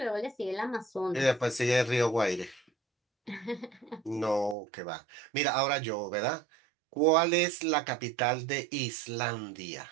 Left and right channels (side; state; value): left; drops out; at 4.5 s